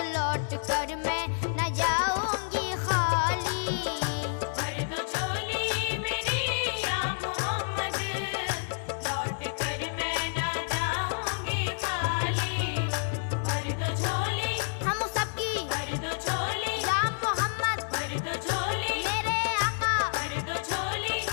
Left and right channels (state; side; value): silent; right; digital silence